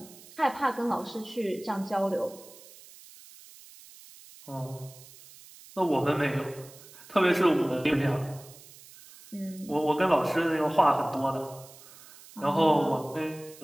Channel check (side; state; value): right; noise; hiss, 21 dB below the sound